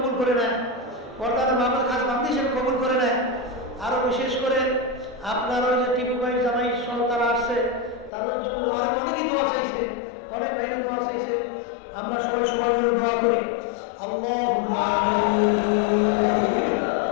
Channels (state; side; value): drops out; right; at 8.1 s